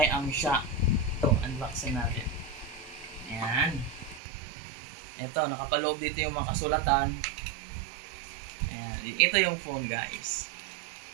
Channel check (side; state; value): left; drops out; at 4.2 s